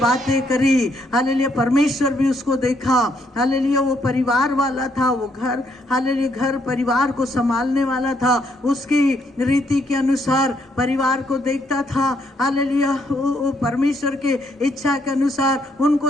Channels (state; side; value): normal; both; correlation 0.72